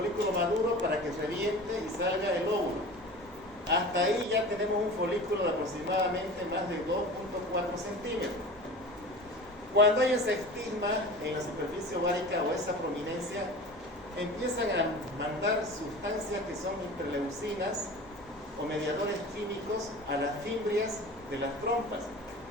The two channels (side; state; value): both; normal; correlation 0.36